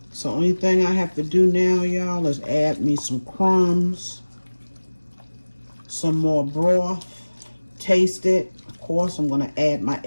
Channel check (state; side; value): inverted; both; correlation -1.00